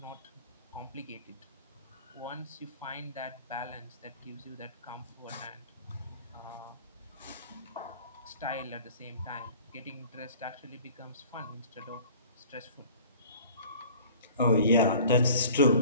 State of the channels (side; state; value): both; inverted; correlation -0.47